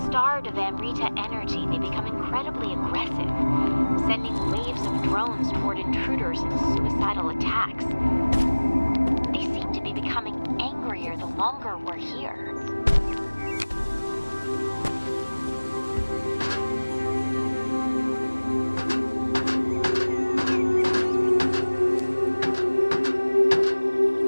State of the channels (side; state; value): both; inverted; correlation -1.00